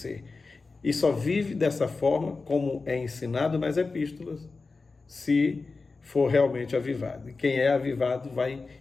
E só vive dessa forma, como é ensinado nas epístolas, se for realmente avivado. E quem é avivado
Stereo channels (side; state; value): right; quieter; 4.0 dB